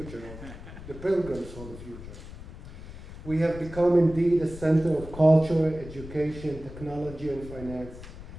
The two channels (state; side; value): noise; left; rumble, 14 dB below the sound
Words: The pilgrims saw the future. We have become indeed a center of culture, education, technology, and finance,